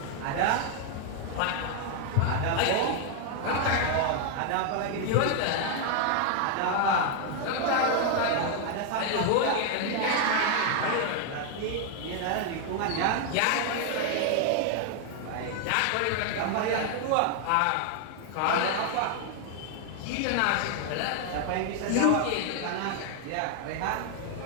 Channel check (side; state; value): both; different; correlation 0.00